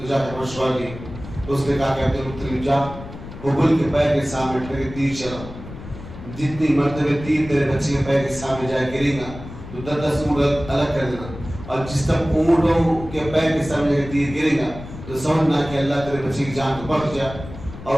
جا کے مشورہ لی. اس نے کہا کہ عبد المطلب جا ببل کے پیر کے سامنے ٹھہر کے تیر چلا. جتنی مرتبہ تیر تیرے بچے کے پیر کے سامنے جائے گرے گا تو 10 اونٹ الگ کر دینا, اور جس تک اونٹوں کے پیر کے سامنے تیر گرے گا تو سمجھنا کہ اللہ تیرے بچے کی جان کو بخش جائے اور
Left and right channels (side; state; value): left; noise; rumble, 13 dB below the sound